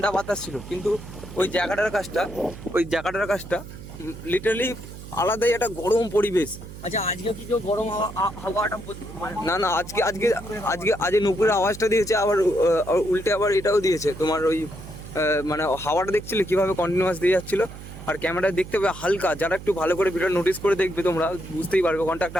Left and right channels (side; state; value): right; noise; hum, 14 dB below the sound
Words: বাতাস ছিল, কিন্তু ওই জায়গাটার কাজটা লিটারালি আলাদাই একটা গরম পরিবেশ। আচ্ছা আজকে কি কেউ গরম হাওয়াটা না আজকে নুপুরের আওয়াজটা দিয়েছে, আবার উল্টে আবার এটাও দিয়েছে তোমার ওই মানে হাওয়াটা দেখছিলে কিভাবে কন্টিনিউয়াস দিয়ে যাচ্ছিল। আর ক্যামেরায় দেখতে পাবে হালকা, যারা একটু ভালো করে ভিডিও নোটিস করে দেখবে তোমরা বুঝতেই পারবে ওখানটা